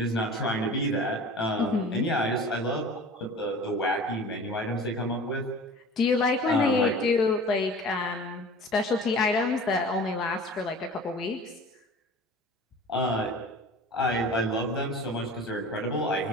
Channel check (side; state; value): both; normal; correlation 0.40